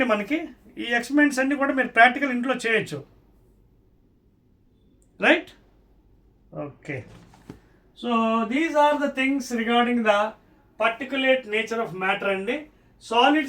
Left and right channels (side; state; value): both; identical; correlation 1.00